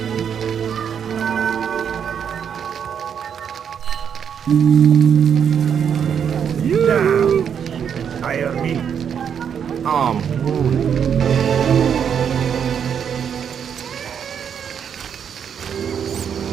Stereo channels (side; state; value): left; quieter; 7.9 dB